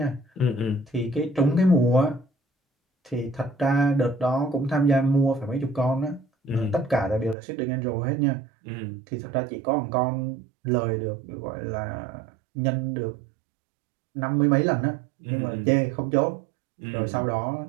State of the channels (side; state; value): left; drops out; at 7.4 s